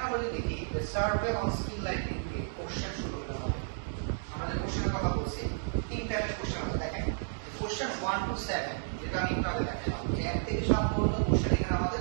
আমরা যদি দেখি সার্ভে অন স্কিল লাইটিং দিয়ে কোশ্চেন শুরু করতে হবে। আমরা যে কোশ্চেনের কথা বলছি, 3 টাইপের কোশ্চেন আছে। দেখেন কোশ্চেন 1 to 7, যেটা আমি একটু আগে দেখালাম, যে 1 থেকে 7 পর্যন্ত কোশ্চেন এখানে আমাদের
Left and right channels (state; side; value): silent; left; digital silence